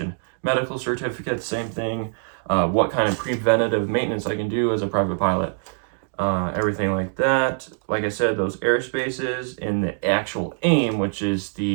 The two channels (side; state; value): left; silent; 59 dB below the other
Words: Medical certificates, same thing. What kind of preventative maintenance I can do as a private pilot. Everything like that. Like I said, those airspaces in the actual AIM, which is